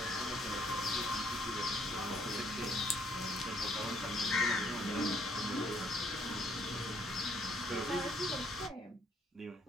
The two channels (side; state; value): both; normal; correlation 0.65